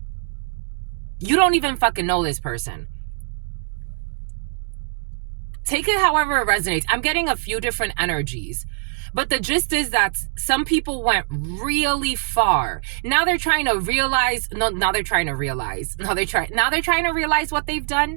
You don't even fucking know this person. Take it however it resonates. I'm getting a few different energies. But the gist is that some people went really far. Now they're trying to realize, now they're trying to realize what they've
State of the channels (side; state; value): left; silent; digital silence